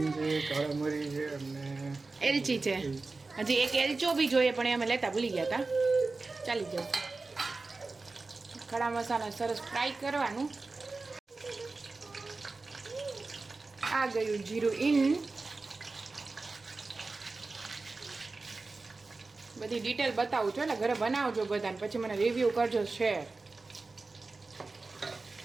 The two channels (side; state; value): left; quieter; 3.7 dB